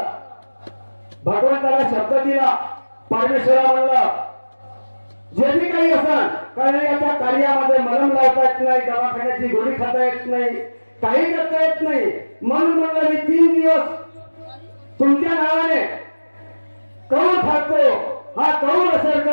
भगवंताला शब्द दिला. परमेश्वरा म्हणलं जे बी काही असेल, कारण याच्या कार्यामध्ये मलम लावता येत नाही, दवाखान्याची गोळी खाता येत नाही, काही करता येत नाही, म्हणून म्हणलं मी 3 दिवस तुमच्या नावाने कौल खातो, हा कौल असेल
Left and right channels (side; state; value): both; inverted; correlation -1.00